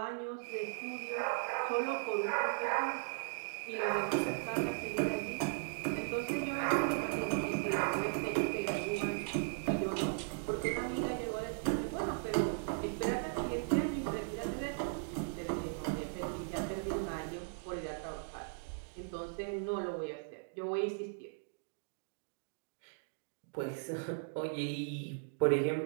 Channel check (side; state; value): left; silent; digital silence